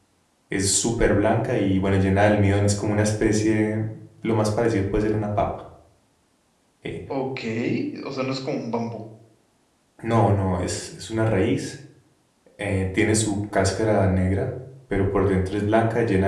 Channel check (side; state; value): both; identical; correlation 1.00